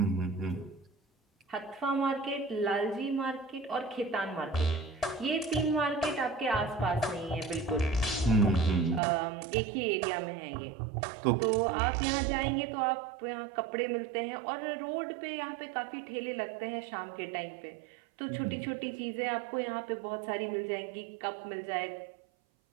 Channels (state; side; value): drops out; left; at 9.0 s